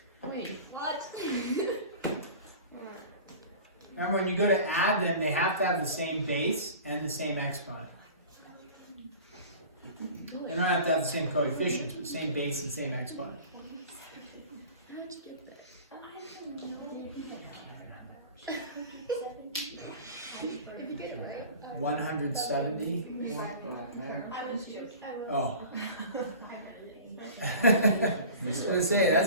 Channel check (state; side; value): inverted; both; correlation -0.39